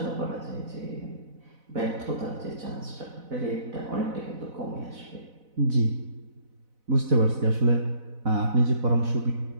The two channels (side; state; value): left; late; 4.0 ms